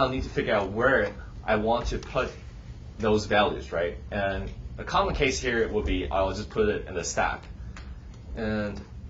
need to figure out where I want to put those values, right? And a common case here will be I'll just put it in the stack. And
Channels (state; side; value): identical; both; correlation 1.00